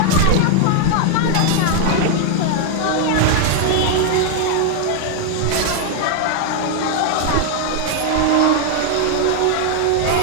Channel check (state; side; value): different; both; correlation 0.00